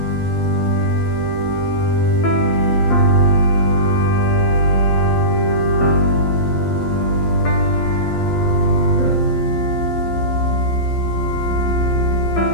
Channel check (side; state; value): right; late; 12 ms